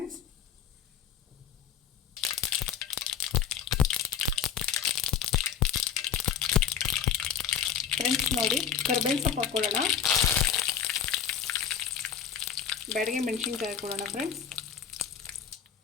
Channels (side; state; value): right; quieter; 8.3 dB